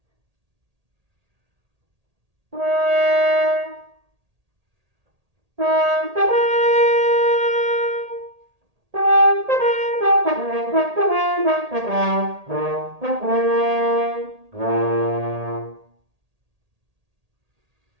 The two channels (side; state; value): left; late; 1.8 ms